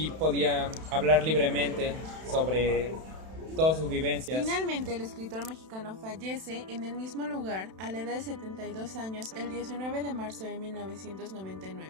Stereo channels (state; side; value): late; left; 31 ms